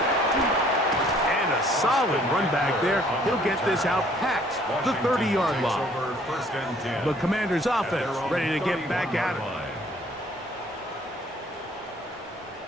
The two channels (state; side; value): normal; both; correlation 0.59